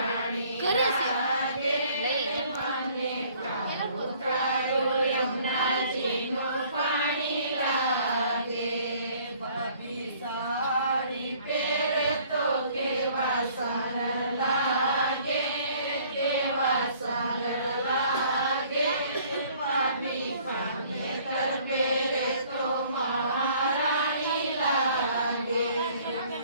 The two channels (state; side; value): inverted; both; correlation -0.57